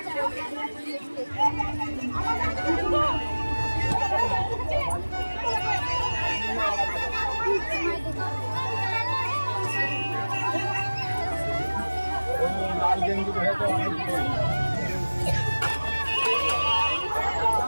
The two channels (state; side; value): inverted; both; correlation -1.00